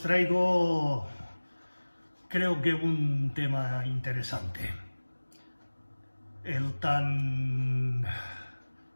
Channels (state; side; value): inverted; both; correlation -1.00